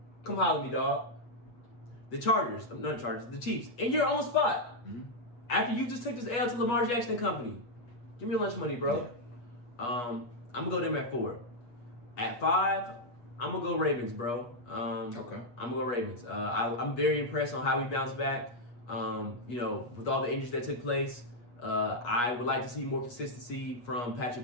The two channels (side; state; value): right; late; 8.4 ms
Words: Come holler at me, dog. The Chargers, not the Chargers, the Chiefs, in your own spot. Mm-hmm. After you just took this L to Lamar Jackson and company. Give me your lunch money, bro. Yeah. I'm going to go them at 4. At 5, I'm going to go Ravens, bro. Okay. I'm going to go Ravens. I'm very impressed on how we bounced back. With all the injuries that took place, I would like to see more consistency from Patrick